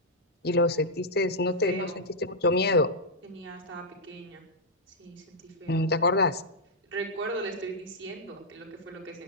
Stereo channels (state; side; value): normal; both; correlation -0.07